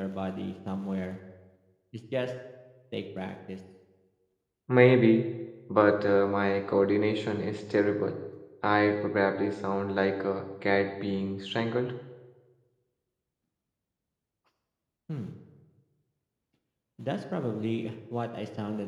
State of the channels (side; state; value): both; identical; correlation 1.00